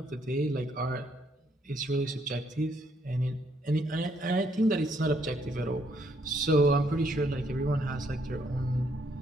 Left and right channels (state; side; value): normal; both; correlation 0.71